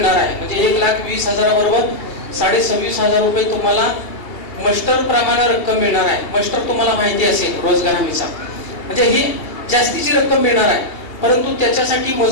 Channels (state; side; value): late; right; 2.8 ms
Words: आहे. म्हणजे 1,20,000 बरोबर 26,500 रुपये तुम्हाला मस्टर प्रमाणे रक्कम मिळणार आहे. मस्टर तुम्हाला माहिती असेल रोजगार हमीचा, म्हणजे ही जास्तीची रक्कम मिळणार आहे. परंतु त्याच्यासाठी